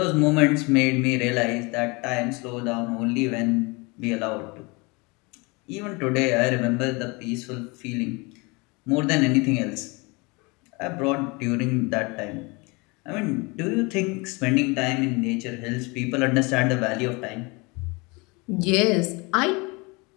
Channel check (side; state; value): right; quieter; 27.3 dB